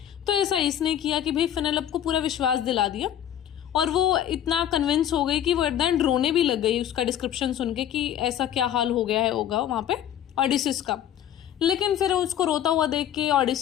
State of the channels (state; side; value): quieter; right; 10.6 dB